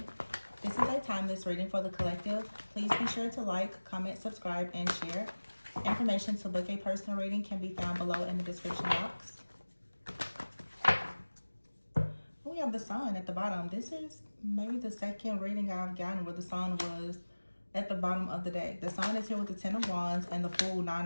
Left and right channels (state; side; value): inverted; both; correlation -1.00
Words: This is a timeless reading for the collective. Please be sure to like, comment, subscribe, and share. Information to book a personal reading can be found below in the description box. We have the sun at the bottom. This is maybe the second reading I've gotten where the sun was at the bottom of the deck. The sun is here with the 10 of Wands and the Fool,